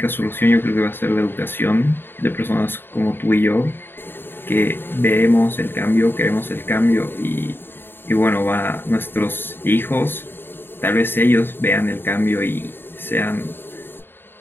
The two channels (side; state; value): right; late; 0.10 ms